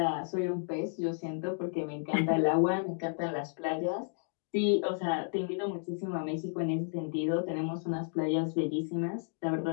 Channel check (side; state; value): right; silent; digital silence